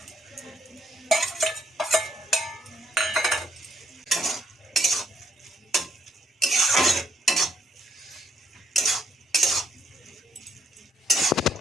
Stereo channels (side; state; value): both; normal; correlation 0.70